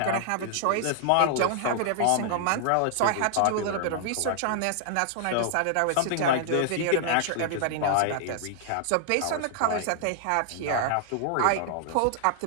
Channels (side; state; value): both; different; correlation -0.01